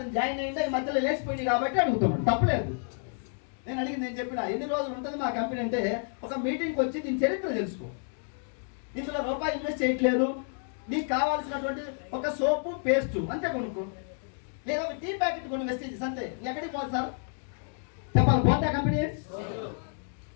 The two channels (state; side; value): silent; right; 58 dB below the other